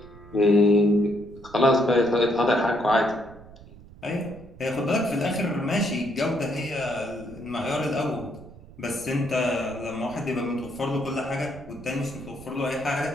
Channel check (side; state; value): right; noise; rumble, 20 dB below the sound